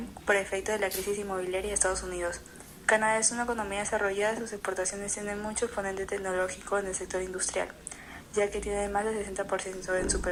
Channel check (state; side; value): identical; both; correlation 1.00